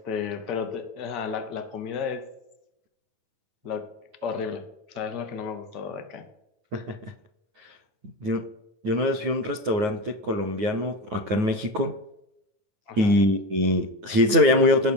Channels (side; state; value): left; late; 9.4 ms